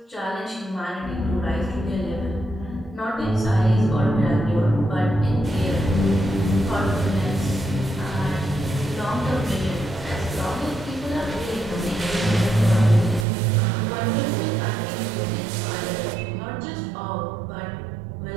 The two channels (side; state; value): left; drops out; at 13.2 s